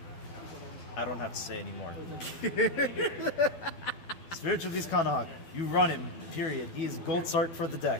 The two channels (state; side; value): late; right; 12 ms